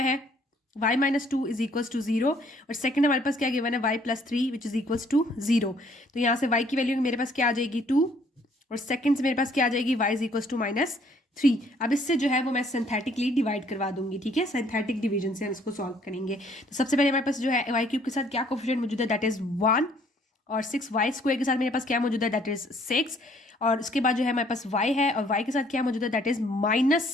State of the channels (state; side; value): normal; both; correlation 0.62